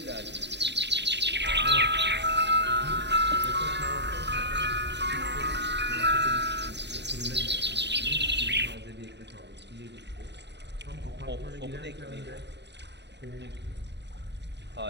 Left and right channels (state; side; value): late; left; 0.50 ms